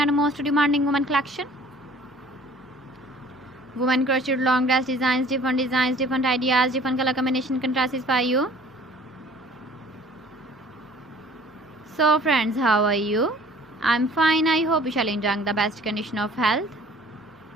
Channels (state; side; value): normal; both; correlation 0.51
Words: most demanding women collection. Women crocheted long dress designs, different ideas, different color combination contrasts for you. So friends, how are you? I'm fine. I hope you shall enjoy the best condition of health.